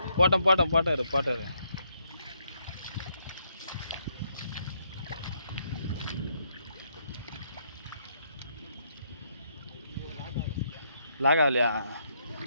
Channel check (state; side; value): inverted; both; correlation -0.75